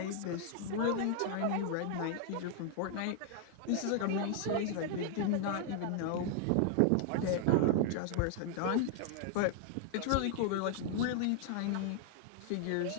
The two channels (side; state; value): both; different; correlation 0.00